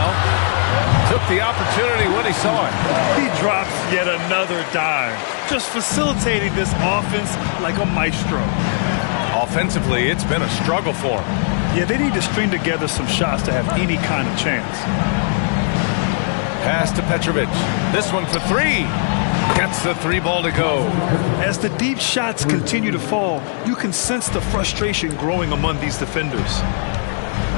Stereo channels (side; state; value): right; silent; 59 dB below the other